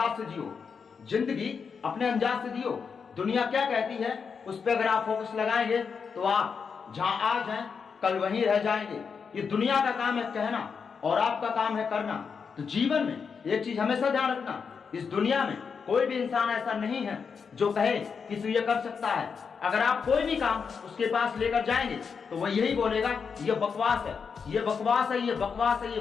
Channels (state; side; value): quieter; right; 5.9 dB